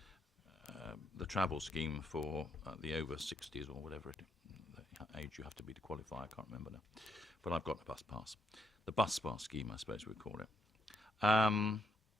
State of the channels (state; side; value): normal; both; correlation 0.77